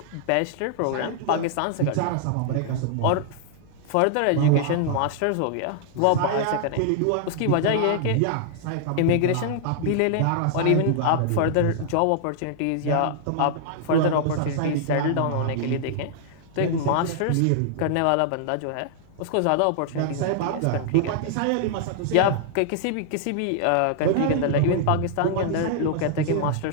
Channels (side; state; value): both; different; correlation -0.01